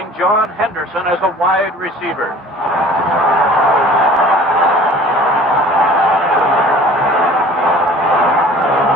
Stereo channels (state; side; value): normal; both; correlation 0.47